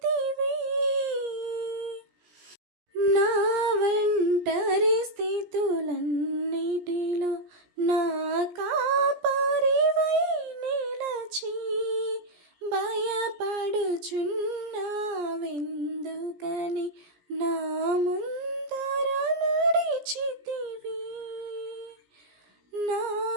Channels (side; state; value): left; late; 17 ms